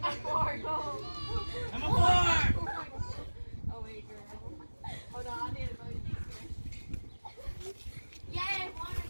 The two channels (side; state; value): both; inverted; correlation -1.00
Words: 4, go. Number 4. Oh wait, girl. Hold on, I need to go. Yeah, one